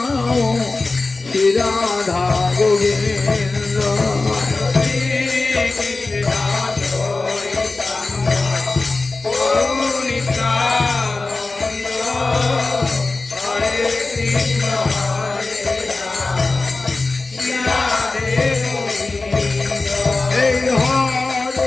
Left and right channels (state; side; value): quieter; right; 3.5 dB